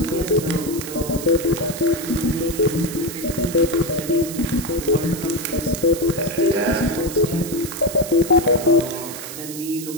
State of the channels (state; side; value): noise; right; hiss, 10 dB below the sound